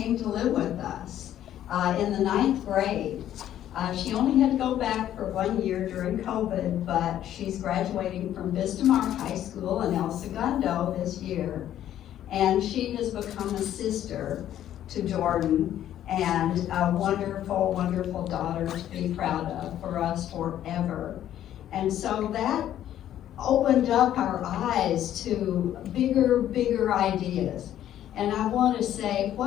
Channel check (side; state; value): right; quieter; 11.6 dB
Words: to live with us in the 9th grade. She only had to go back for 1 year during COVID, but she's graduating from Vistamar High School in El Segundo this year. And she has become a sister to Jordan and a wonderful, wonderful daughter to be proud of for us forever. And so that opened up our eyes to bigger ideas. And I want to say,